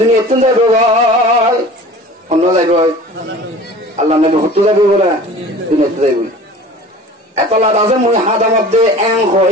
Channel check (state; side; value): normal; both; correlation 0.42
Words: তুন যাইব ভাই অন্য যাইব আল্লাহ নবী হত্যু যাবে বলে দুনিয়া যাইব। এত লাভ আছে মুই হাতের মধ্যে এং